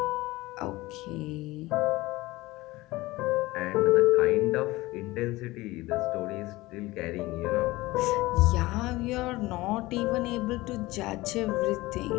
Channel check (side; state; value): right; quieter; 19.7 dB